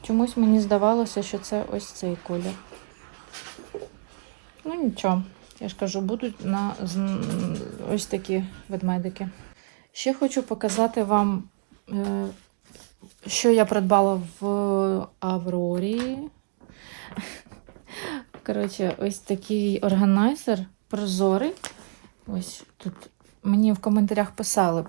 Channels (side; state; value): left; silent; digital silence